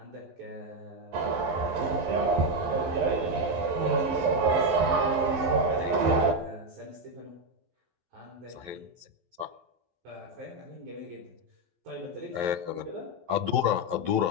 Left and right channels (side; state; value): left; late; 12 ms